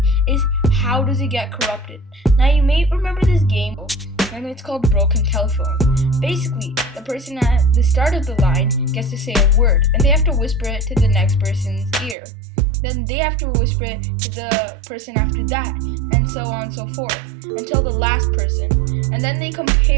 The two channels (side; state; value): left; drops out; at 12.2 s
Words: is how does it get corrupted. Now you may remember this game, and it's called Broken Telephone. Basically, the person at the start of the line gets to say a word, and they have to whisper it to the next person's ear. Then they have to whisper it to the person after that, and so on and so forth, until the last person. And then they